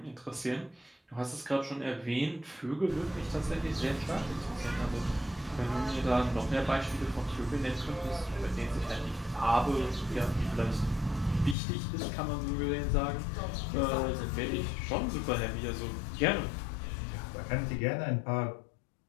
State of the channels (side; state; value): right; drops out; at 11.6 s